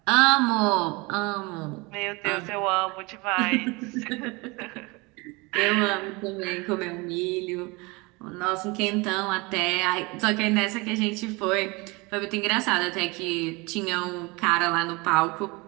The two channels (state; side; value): quieter; left; 25.9 dB